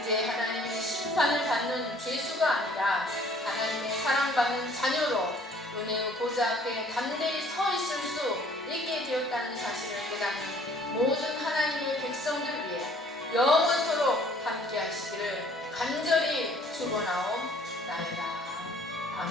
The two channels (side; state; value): both; normal; correlation 0.56